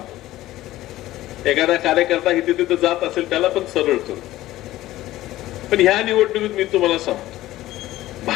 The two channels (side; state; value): right; quieter; 15.6 dB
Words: एखादा कार्यकर्ता इथे तिथे जात असेल त्याला पण सरळ करू. पण ह्या निवडणुकीत मी तुम्हाला सांगतो,